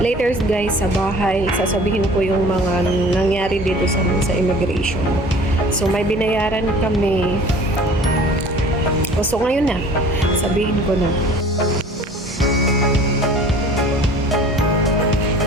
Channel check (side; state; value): both; normal; correlation 0.46